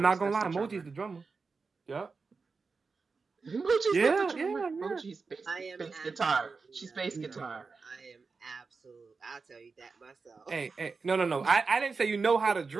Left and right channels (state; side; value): quieter; left; 4.6 dB